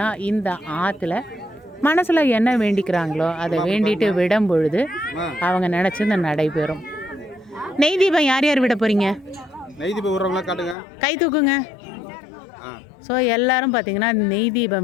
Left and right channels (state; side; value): drops out; right; at 10.8 s